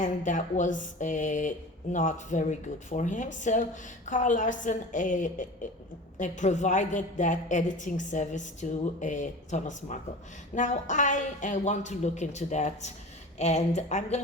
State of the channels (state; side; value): normal; both; correlation 0.36